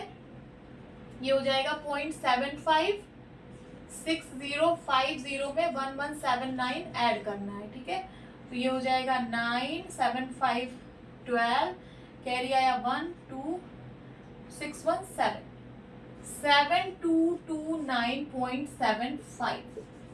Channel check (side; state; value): both; identical; correlation 1.00